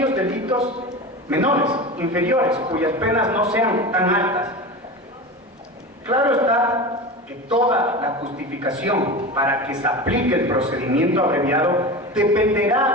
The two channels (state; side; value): normal; both; correlation 0.28